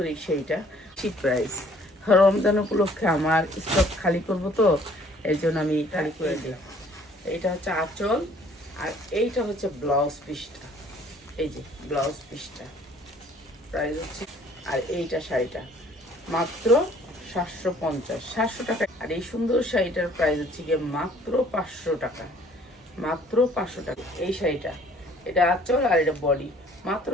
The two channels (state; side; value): normal; both; correlation 0.57